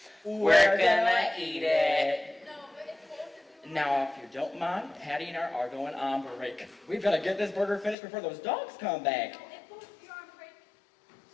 We're gonna eat it. No, but if both of you... Now, if you don't mind, Patty and I are going on break. We've got to get this burger finished before those dogs come back. No, if both of you are on break,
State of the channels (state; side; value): drops out; right; at 8.0 s